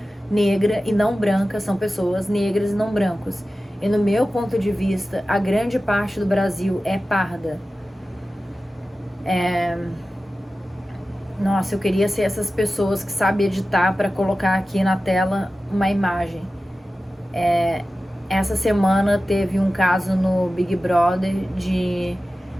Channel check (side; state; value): both; normal; correlation 0.94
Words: negra e não branca são pessoas negras e não brancos. E no meu ponto de vista, a grande parte do Brasil é parda. Nossa, eu queria ser essas pessoas que sabem editar para colocar aqui na tela uma imagem. Essa semana teve um caso no Big Brother de